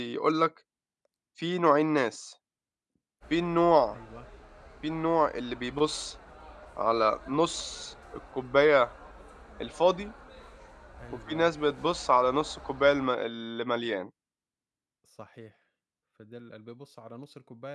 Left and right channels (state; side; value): identical; both; correlation 1.00